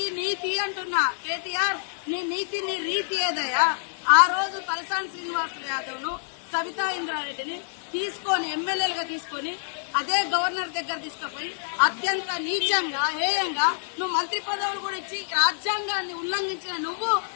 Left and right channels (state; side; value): silent; right; digital silence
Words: నీతి అంటున్నా కేటీఆర్, నీ నీతి నీ రీతి ఏదయ్యా? ఆ రోజు తలసాని శ్రీనివాస్ యాదవ్ ను సవితా ఇంద్రారెడ్డిని తీసుకొని ఎమ్మెల్యేలుగా తీసుకొని అదే గవర్నర్ దగ్గర తీసుకుపోయి అత్యంత నీచంగా హేయంగా నువ్వు మంత్రి పదవులు కూడా ఇచ్చి రాజ్యాంగాన్ని ఉల్లంఘించిన నువ్వు